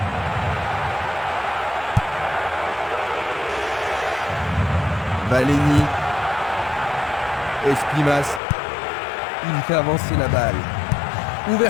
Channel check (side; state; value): right; drops out; at 8.4 s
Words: Valeni. Esquimas. Il fait avancer la balle.